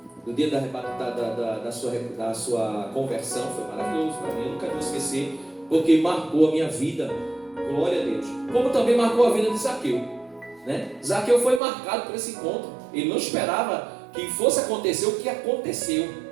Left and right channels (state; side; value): drops out; left; at 11.6 s